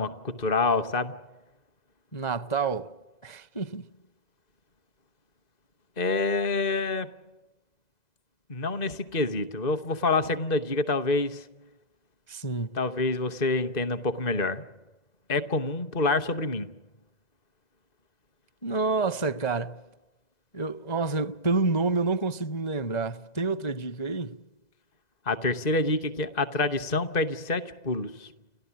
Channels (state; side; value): late; right; 2.0 ms